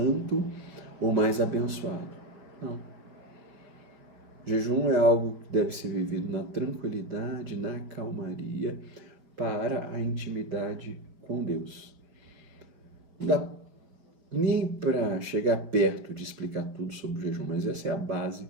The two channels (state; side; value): late; left; 5.7 ms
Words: ou mais abençoado. Não. Jejum é algo que deve ser vivido na tranquilidade, na calmaria, para a intimidade com Deus. Não dá nem para chegar perto de explicar tudo sobre o jejum, mas essa é a base